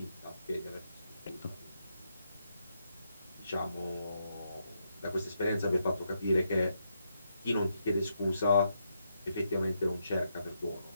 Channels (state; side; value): inverted; both; correlation -0.81